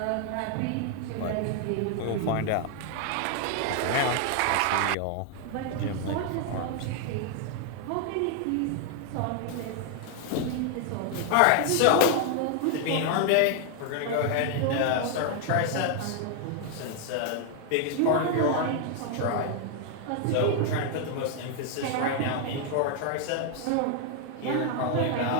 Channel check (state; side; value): different; both; correlation 0.00